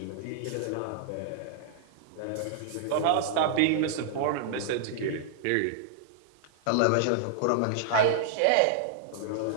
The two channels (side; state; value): both; different; correlation -0.01